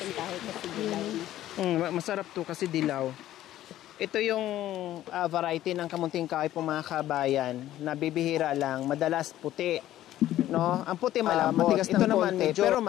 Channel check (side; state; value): right; quieter; 13.5 dB